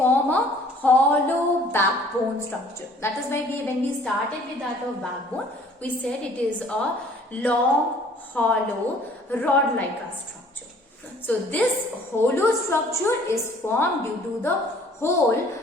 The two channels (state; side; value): normal; both; correlation 0.55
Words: a hollow backbone structure. That is why when we started with that of backbone, we said it is a long, hollow, rod-like structure. So this hollow structure is formed due to the hole